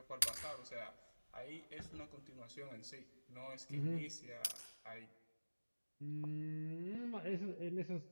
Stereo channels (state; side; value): inverted; both; correlation -1.00